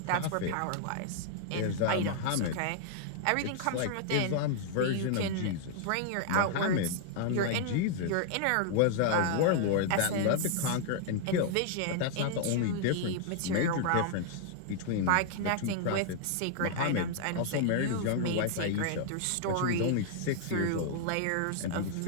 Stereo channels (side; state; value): both; different; correlation -0.01